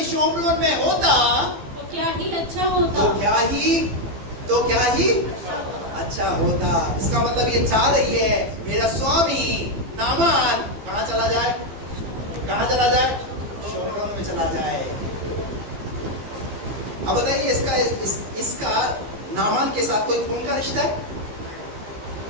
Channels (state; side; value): late; left; 15 ms